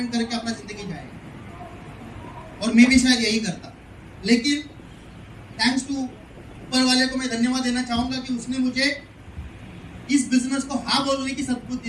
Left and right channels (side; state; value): both; identical; correlation 1.00